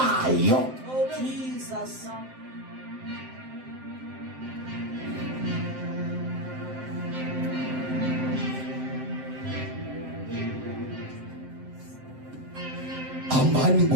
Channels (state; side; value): late; left; 7.7 ms